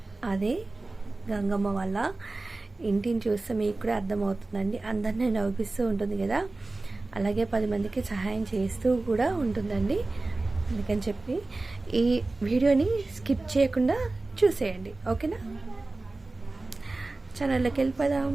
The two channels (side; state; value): left; quieter; 3.2 dB